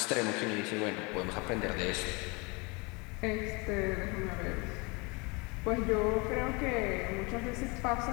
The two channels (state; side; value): quieter; right; 28.1 dB